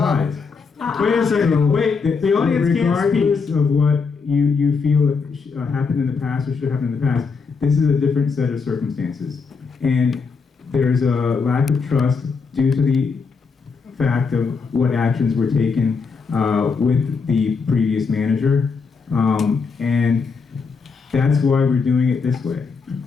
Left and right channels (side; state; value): right; quieter; 5.1 dB